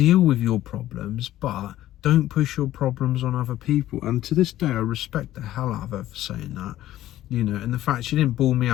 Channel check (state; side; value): quieter; right; 14.0 dB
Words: with your problems, but don't push your problems on other people. And to this day, I respect the hell out of her for saying that, you know. And the fact she didn't bawl me